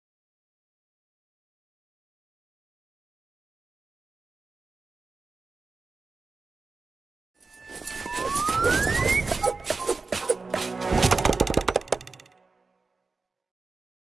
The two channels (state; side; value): quieter; left; 4.1 dB